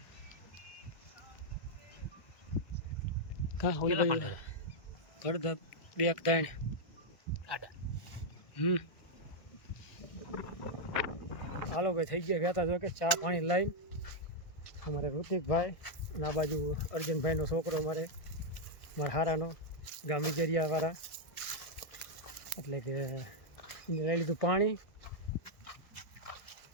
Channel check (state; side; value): late; right; 1.6 ms